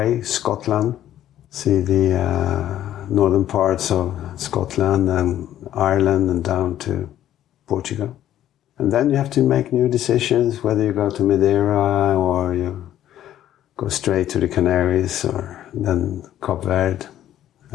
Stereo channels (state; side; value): quieter; right; 12.0 dB